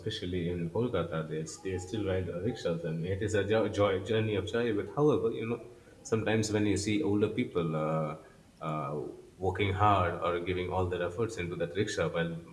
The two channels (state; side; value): identical; both; correlation 1.00